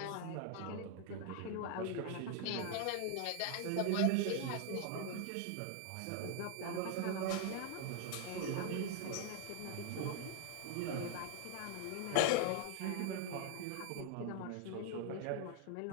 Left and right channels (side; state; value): both; different; correlation 0.00